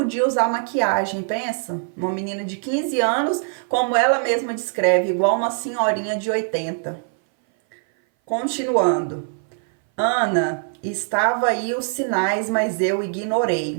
usar maquiagem, pensa? Uma menina de 15 anos, como ela mesma descreve, igual uma senhorinha de 80. Continuando. Ana, estava aí os sinais, mas eu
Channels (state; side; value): silent; left; 59 dB below the other